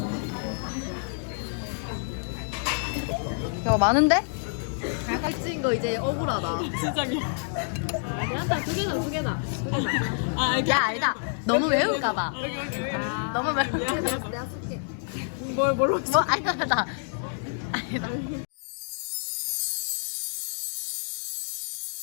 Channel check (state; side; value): silent; right; digital silence